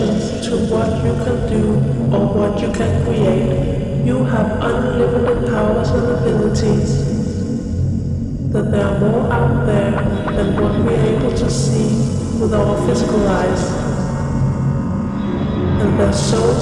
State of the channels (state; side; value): identical; both; correlation 1.00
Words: to what you can do or what you can create. You have unlimited powers and abilities. That there are more out there than what we're able to see with our physical eyes. And their soul